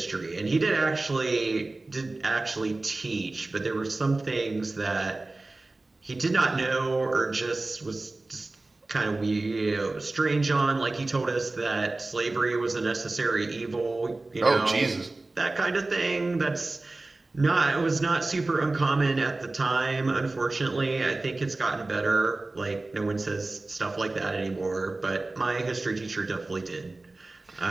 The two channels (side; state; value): left; quieter; 3.1 dB